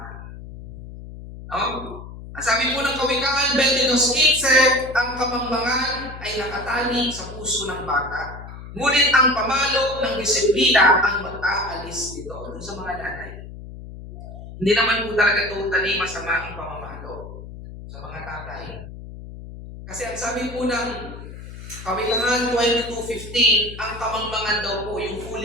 Ang sabi po ng Kawikaan 22:15, ang kamangmangan ay nakatali sa puso ng bata, ngunit ang pamalo ng disiplina ang mag-aalis dito. Doon sa mga nanay. Hindi naman po talaga totally masama ang pamamalo sa mga tatay. Kasi ang sabi po ng Kawikaan 22:15, ang kamangmangan daw po, yung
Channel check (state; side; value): noise; left; hum, 13 dB below the sound